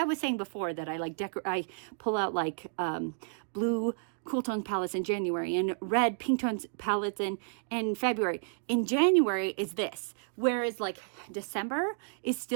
was saying before, that I like I pull out like blue cool tones palettes in January and red pink tones palettes in February. In January is this, whereas like December is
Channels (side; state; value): left; silent; digital silence